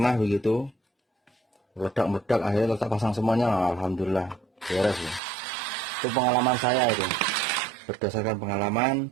begitu, meledak akhirnya tetap pasang semuanya, alhamdulillah beres ya. Itu pengalaman saya itu, berdasarkan pengalaman.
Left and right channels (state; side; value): drops out; left; at 5.2 s